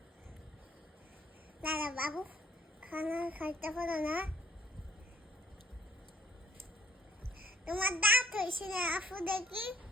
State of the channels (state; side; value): normal; both; correlation 0.58